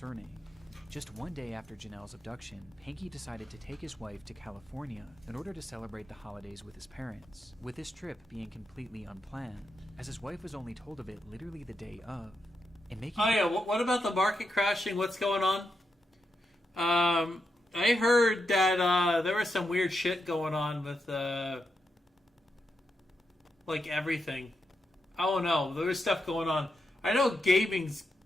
Just one day after Janelle's abduction, Pankey decided to take his wife to California in order to celebrate the holidays with his parents, with this trip being completely unplanned, as his wife was only told of it literally the day of. Oh yeah, what about the market crashing? What's going on? I heard that there was some weird shit going on with like everything. I don't know. There was stuff going on. I know gaming's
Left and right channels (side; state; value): both; normal; correlation 0.85